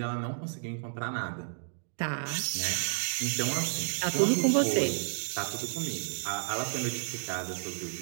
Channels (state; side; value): silent; left; digital silence